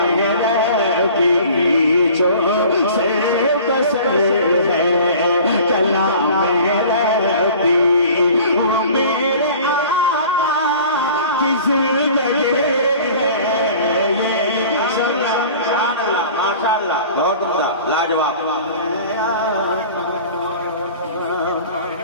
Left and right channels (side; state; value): both; inverted; correlation -0.44